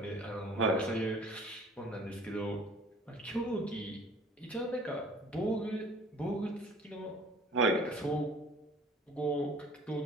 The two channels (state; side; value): normal; both; correlation 0.50